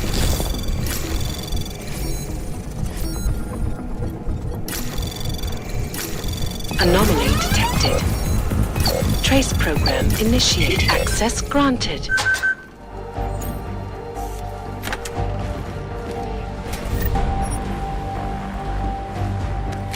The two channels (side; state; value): both; identical; correlation 1.00